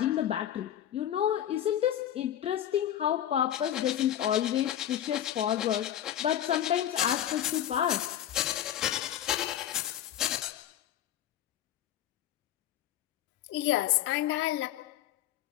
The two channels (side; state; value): right; quieter; 11.5 dB